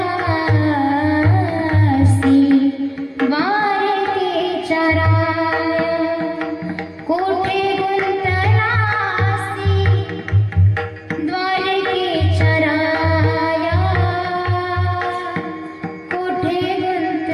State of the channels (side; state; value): both; identical; correlation 1.00